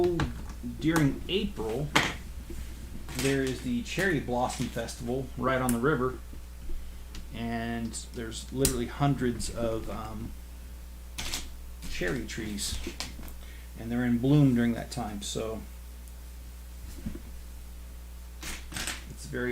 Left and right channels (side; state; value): both; identical; correlation 1.00